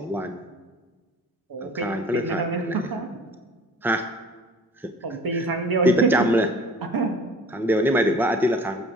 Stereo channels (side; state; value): both; normal; correlation 0.47